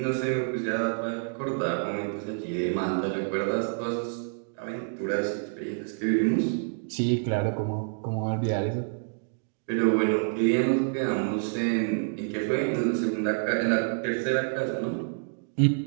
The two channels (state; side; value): silent; left; digital silence